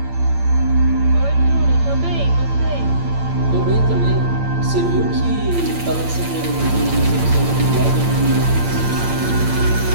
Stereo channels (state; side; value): late; left; 8.8 ms